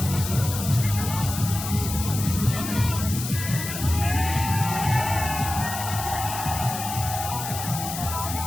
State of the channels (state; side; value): noise; left; hiss, 7 dB below the sound